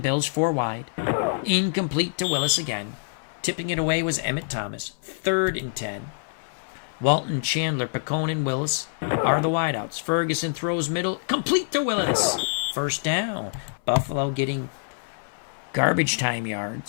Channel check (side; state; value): right; silent; 59 dB below the other